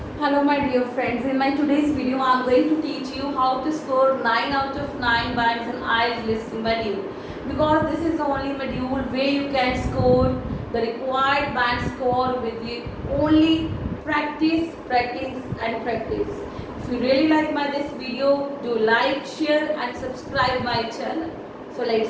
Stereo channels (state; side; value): identical; both; correlation 1.00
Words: Hello my dear friends, in my today's video I am going to teach you how to score 9 out of 9 bands in IELTS listening module, because this is the only module where you can score the required band score with the only practice and practice. If you really like this video, do like, share and subscribe my channel. So